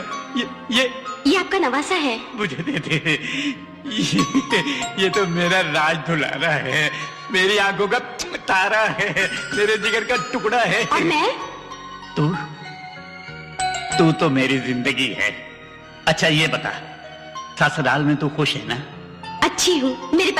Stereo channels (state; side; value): identical; both; correlation 1.00